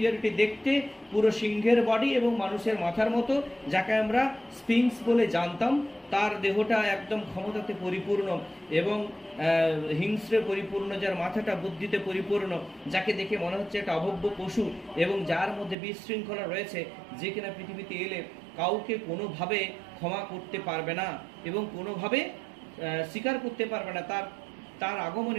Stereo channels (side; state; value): left; drops out; at 15.8 s